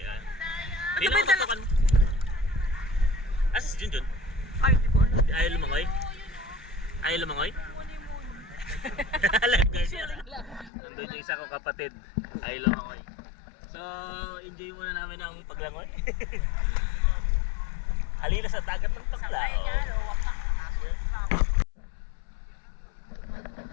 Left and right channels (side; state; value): right; drops out; at 10.7 s